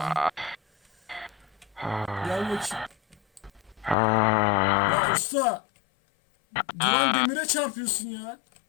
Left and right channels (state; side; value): drops out; right; at 4.0 s